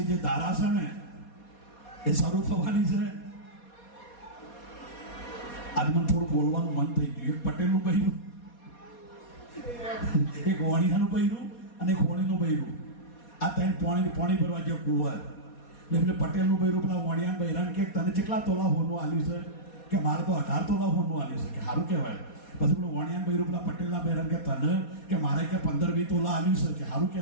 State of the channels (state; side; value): late; right; 4.2 ms